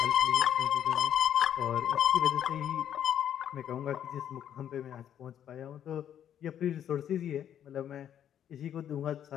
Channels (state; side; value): quieter; right; 9.9 dB